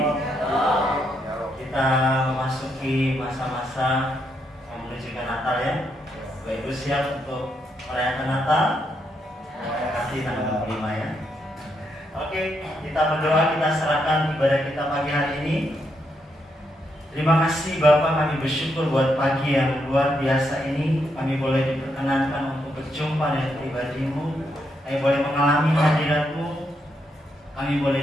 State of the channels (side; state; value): both; normal; correlation 0.79